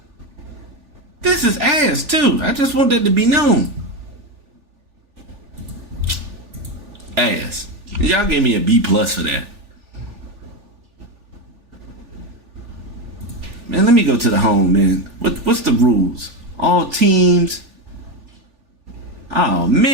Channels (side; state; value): left; late; 3.4 ms